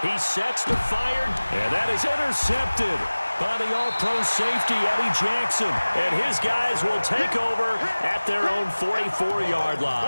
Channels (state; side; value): inverted; both; correlation -1.00